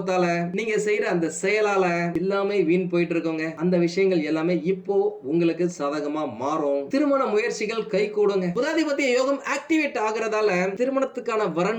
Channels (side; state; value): both; identical; correlation 1.00